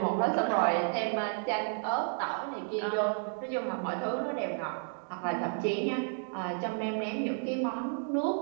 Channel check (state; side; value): silent; left; 57 dB below the other